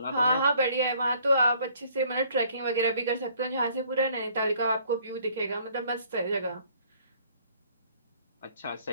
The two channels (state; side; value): inverted; both; correlation -0.60